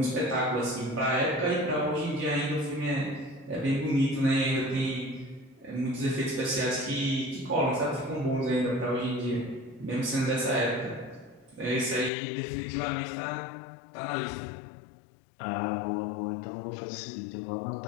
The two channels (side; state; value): right; drops out; at 12.1 s